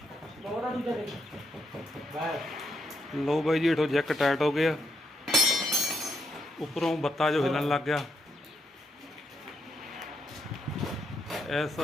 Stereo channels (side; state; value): both; normal; correlation 0.78